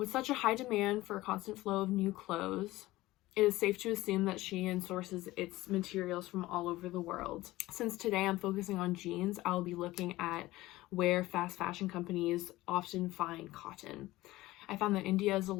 such a high demand for a constant flow of new clothes, it is safe to assume that Shein sources its materials from all over the world. Since today I'm focusing on jeans, I'll be looking at where fast fashion companies often find cotton. I found that India is a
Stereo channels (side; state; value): right; quieter; 17.9 dB